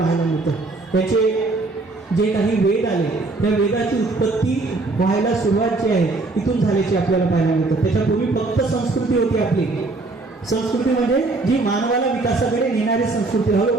मिळतं. त्याचे जे काही वेद आले त्या वेदाची उत्पत्ती व्हायला सुरुवात जी आहे इथून झाल्याची आपल्याला पाहायला मिळतं. त्याच्यापूर्वी फक्त संस्कृती होती आपली. संस्कृती म्हणजे जी मानवाला विकासाकडे नेणारी संस्कृती.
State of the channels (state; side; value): quieter; left; 3.3 dB